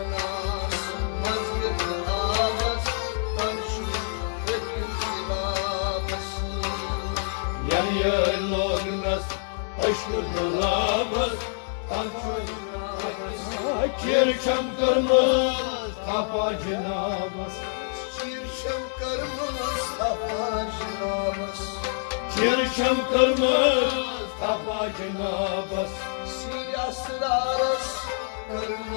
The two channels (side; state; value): right; silent; digital silence